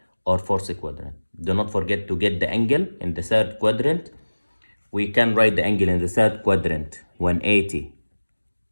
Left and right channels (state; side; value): inverted; both; correlation -1.00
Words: not forget to get the angle in the third quadrant. We can write the angle in the third quadrant 180